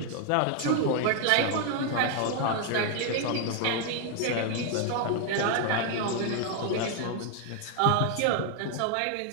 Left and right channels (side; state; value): both; different; correlation 0.00